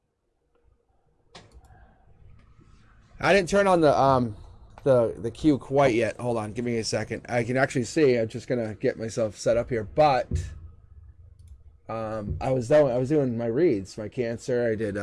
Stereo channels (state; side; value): identical; both; correlation 1.00